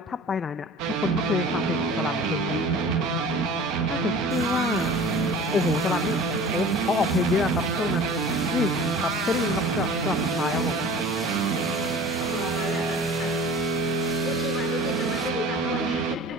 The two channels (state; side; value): normal; both; correlation 0.42